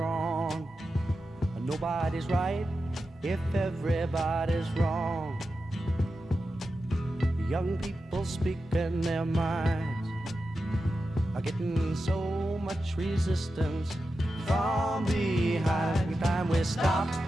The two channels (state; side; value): normal; both; correlation 0.91